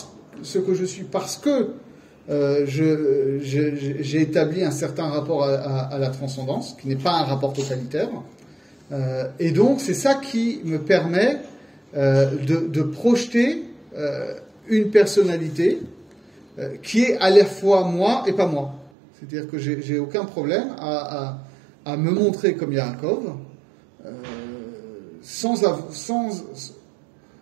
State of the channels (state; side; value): drops out; left; at 18.9 s